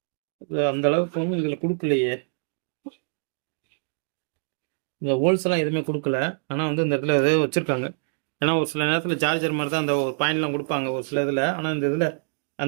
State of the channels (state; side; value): silent; left; digital silence